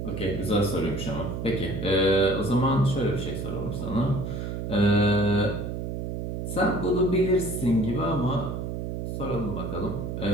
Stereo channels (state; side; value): noise; right; hum, 4 dB below the sound